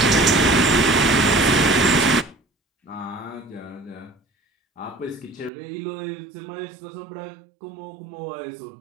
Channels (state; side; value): drops out; left; at 5.5 s